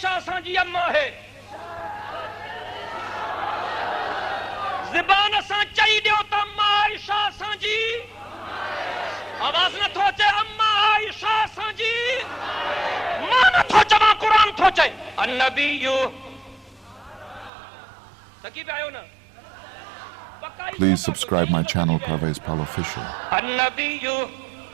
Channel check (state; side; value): drops out; left; at 17.5 s